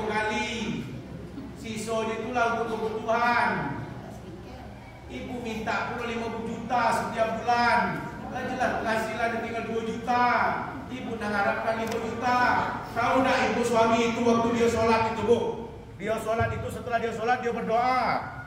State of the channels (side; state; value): both; identical; correlation 1.00